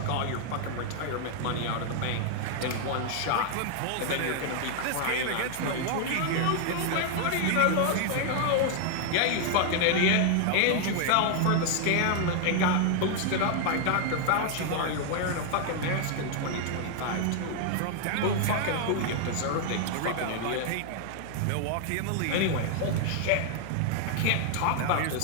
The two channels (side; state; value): both; different; correlation 0.00